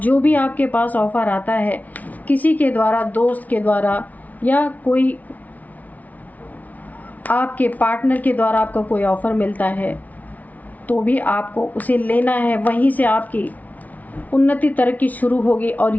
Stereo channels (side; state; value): right; late; 0.073 ms